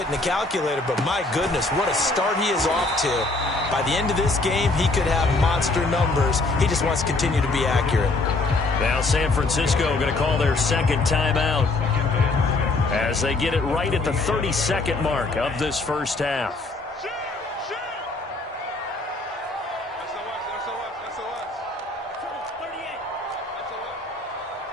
the calculator. But my goodness, what a start he is off to. By the end of this game, he could have monster numbers. He just wants to continue to be accurate. Now San Francisco going to call their 2nd timeout as they get it right at the 32nd mark of this first half.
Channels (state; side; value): quieter; right; 3.2 dB